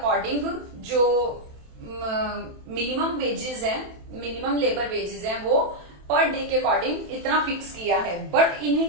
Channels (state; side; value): late; left; 27 ms